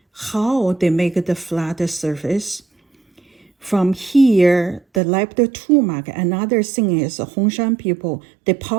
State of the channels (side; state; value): left; drops out; at 5.0 s